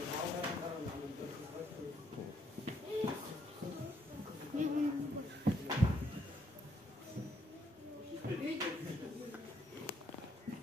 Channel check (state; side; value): normal; both; correlation 0.72